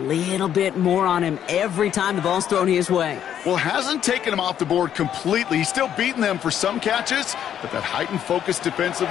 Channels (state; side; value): quieter; right; 9.8 dB